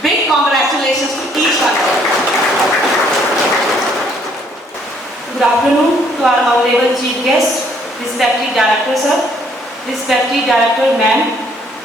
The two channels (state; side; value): normal; both; correlation 0.65